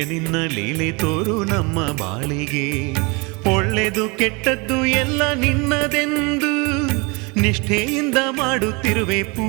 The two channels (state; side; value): quieter; left; 28.6 dB